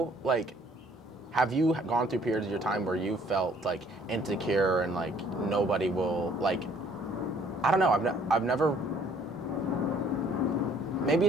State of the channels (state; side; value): normal; both; correlation 0.60